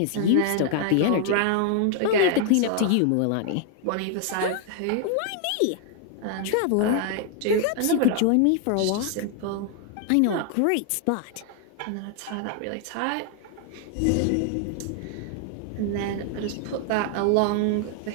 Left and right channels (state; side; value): different; both; correlation 0.00